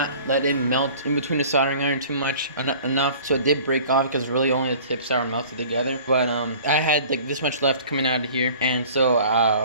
let it melt in between the soldering iron too much enough, so it did break off because really only the tips are melted together. But I had like this much left coming out of here, and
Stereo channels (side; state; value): both; inverted; correlation -0.46